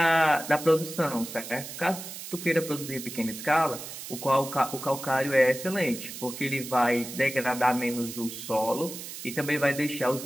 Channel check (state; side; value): noise; right; hiss, 10 dB below the sound